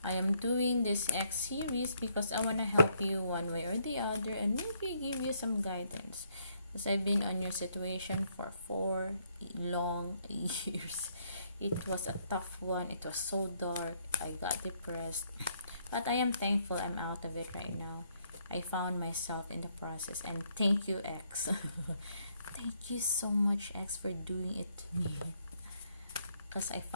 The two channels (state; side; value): inverted; both; correlation -0.71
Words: I am doing this X series because I want to help you one way or the other and maybe give you some guidance. Because I've been on your situation for 4 long years. It was a tough one. It was so dark. I got depressed. But I am thankful I'm out of it right now. I found myself in the process, and thank you, X. Thank you so much, X, for doing it to me. Because I